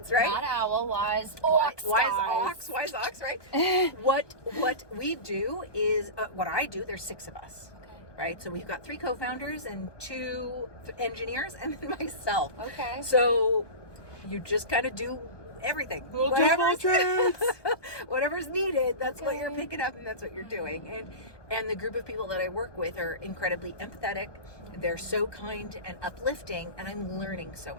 right? Not owl, WiseOx. WiseOx, right? What we do is, what I do, there's 6 of us, right? So we've got 3 co-founders and 2 engineers and then myself. Okay. So you just kind of do everything. Whatever's needed, that's what you're picking up and that's what you're doing. And the group of people that I work with are incredibly empathetic. They're so kind and uplifting, and I'm learning so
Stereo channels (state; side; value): late; right; 1.2 ms